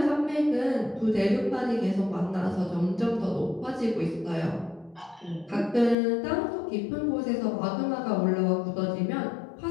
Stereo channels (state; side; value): drops out; right; at 6.0 s